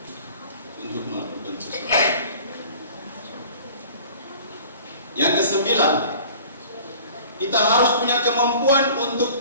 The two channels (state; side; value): inverted; both; correlation -0.46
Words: untuk melakukan sesuatu. Yang ke-9, kita harus punya kemampuan